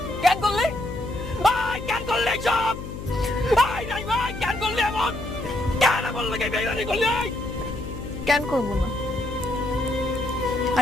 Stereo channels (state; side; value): noise; left; hum, 9 dB below the sound